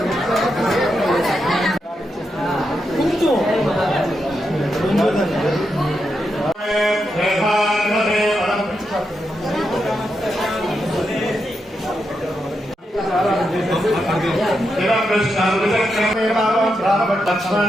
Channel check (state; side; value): normal; both; correlation 0.84